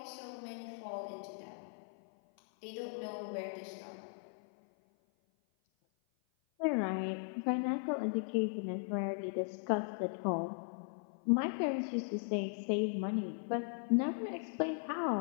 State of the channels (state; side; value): silent; right; 52 dB below the other